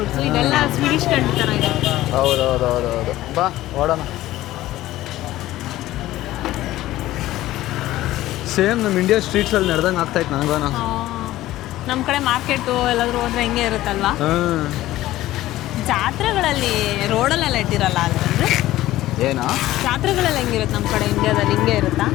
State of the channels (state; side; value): quieter; right; 15.6 dB